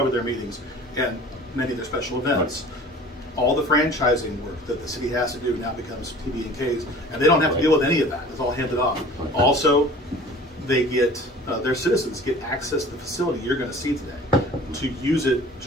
their meetings and many of their special events. Right. All the franchising work that the city has to do now becomes TBNK's, and they don't have to deal with any of that. It's all handed off. Also, they get their citizens get access to the facility you're going to see today, to use it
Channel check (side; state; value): both; normal; correlation 0.45